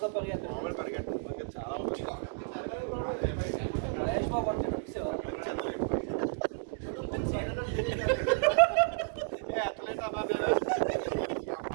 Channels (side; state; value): left; silent; digital silence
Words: పరిగెత్తాడు. మామూలు పరిగెట్టాను చాలా మహేష్ బాబు అంటే ఫిక్స్